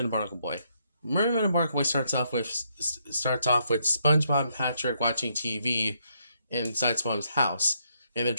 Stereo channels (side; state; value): both; inverted; correlation -0.75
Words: Barnacle Boy. Mermaid and Barnacle Boy starts off with SpongeBob and Patrick watching TV inside SpongeBob's house, and they're